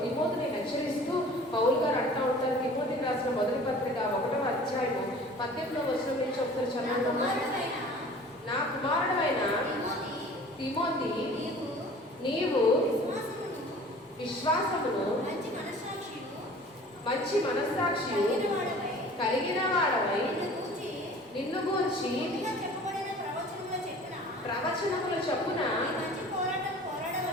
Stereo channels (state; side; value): normal; both; correlation 0.46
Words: తిమోతిని హెచ్చరిస్తూ పౌలు గారు అంటూ ఉంటారు. తిమోతికి రాసిన మొదటి పత్రిక 1వ అధ్యాయము 18వ వచనం నుంచి ఒకసారి చదవండి. నా కుమారుడైన తిమోతి, నీవు విశ్వాసమును మంచి మనస్సాక్షి కలిగిన వాడవై నిన్ను గూర్చి ప్రవచనముల చొప్పున